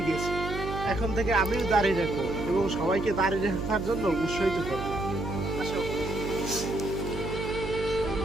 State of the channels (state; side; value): noise; right; hum, 7 dB below the sound